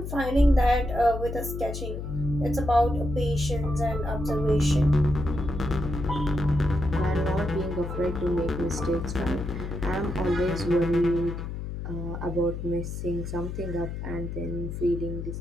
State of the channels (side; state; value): left; noise; hum, 6 dB below the sound